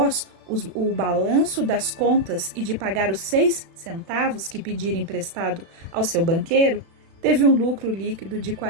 o balanço das contas e de pagar os 6 centavos que pedira emprestado ao seu banqueiro, teve um lucro líquido de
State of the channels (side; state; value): left; late; 36 ms